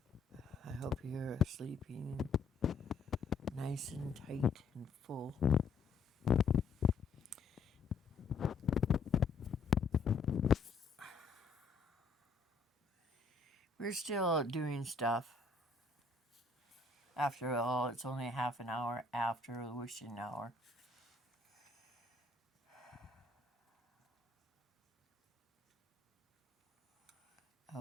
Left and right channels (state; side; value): quieter; right; 4.3 dB